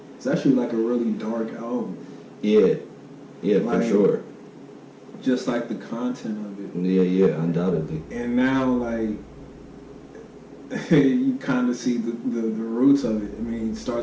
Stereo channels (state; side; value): identical; both; correlation 1.00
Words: it's actually like a really dark album. Yeah, like, for sure. Just like the content of it. Yeah, undoubtedly. And now, like, you kind of see the roots of it. I mean, it